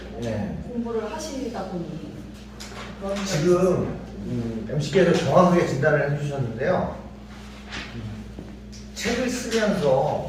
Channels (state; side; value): identical; both; correlation 1.00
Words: 예. 공부를 하시다 보니 그런 점이 지금 MC께서 정확하게 진단을 해주셨는데요. 책을